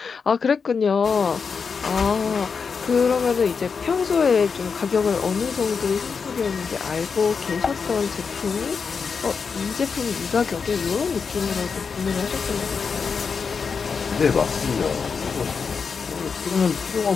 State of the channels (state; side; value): quieter; right; 5.6 dB